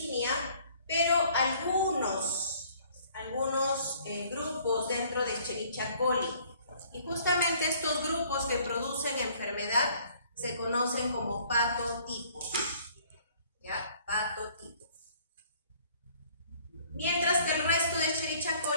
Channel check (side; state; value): both; inverted; correlation -0.58